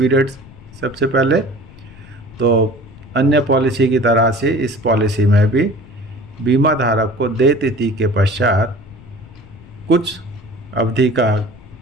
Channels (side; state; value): left; noise; rumble, 21 dB below the sound